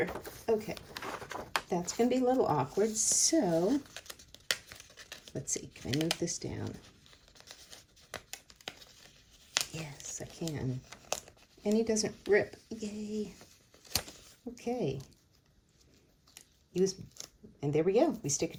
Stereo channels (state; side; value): identical; both; correlation 1.00